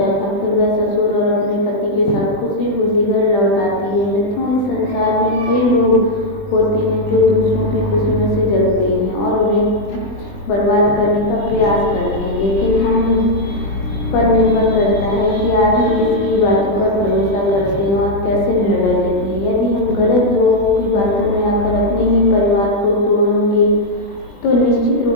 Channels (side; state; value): right; late; 20 ms